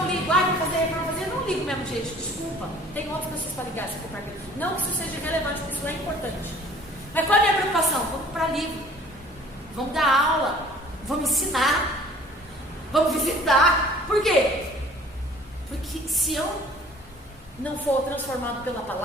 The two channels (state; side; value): normal; both; correlation 0.51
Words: ligo? Vou fazer reforma, eu não ligo mesmo, gente, desculpa. Tem outras pessoas para ligar, se for para mim. Não que isso seja relevante, porque isso é importante. Mas qual é a minha preocupação? Vamos para livro, vamos dar aula, vamos ensinar, vamos visitar. Por quê? Porque se eu não for transformado pela